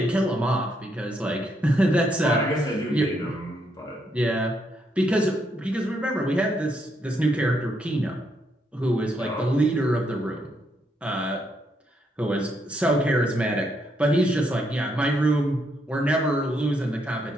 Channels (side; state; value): both; normal; correlation 0.76